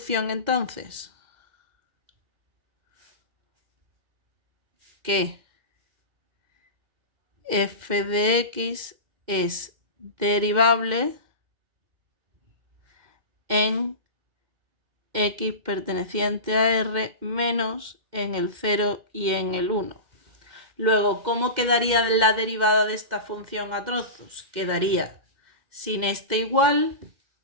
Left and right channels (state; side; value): late; left; 2.1 ms